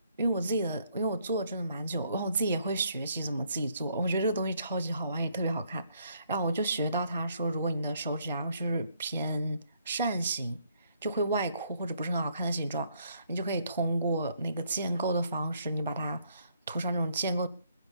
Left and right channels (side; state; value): both; inverted; correlation -0.69